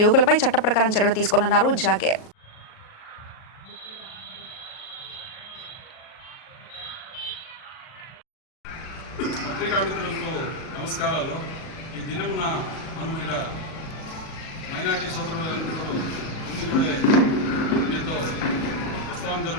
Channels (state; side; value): late; right; 38 ms